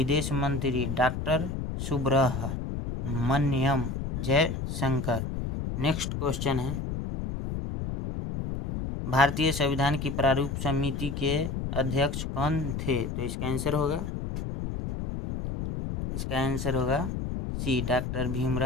मंत्री doctor Subrahmanyam Jaishankar. Next question है, भारतीय संविधान की प्रारूप समिति के अध्यक्ष कौन थे? तो इसका आंसर होगा सी, डॉक्टर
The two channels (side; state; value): left; noise; rumble, 4 dB below the sound